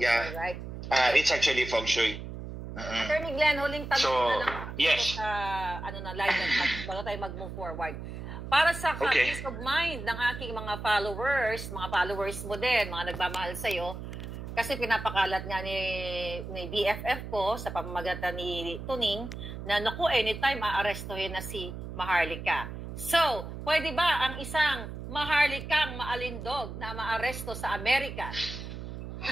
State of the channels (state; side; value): noise; right; hum, 9 dB below the sound